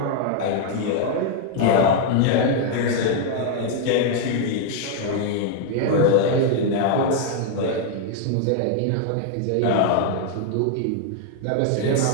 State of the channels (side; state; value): both; different; correlation 0.00